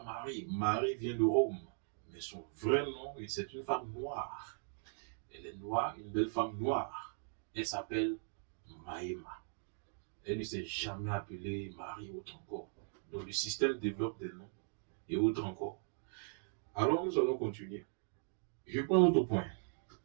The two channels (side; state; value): left; silent; digital silence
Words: Marie. Marie vient de Rome. Mais son vrai nom, c'est une femme noire. Elle est noire, une belle femme noire. Elle s'appelle Maïma. Elle ne s'est jamais appelée Marie autre encore. Donc le système développe des noms et autres encore. Alors nous allons continuer. Je prends un autre point.